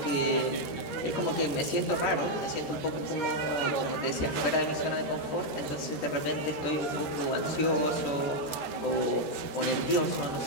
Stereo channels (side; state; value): right; late; 13 ms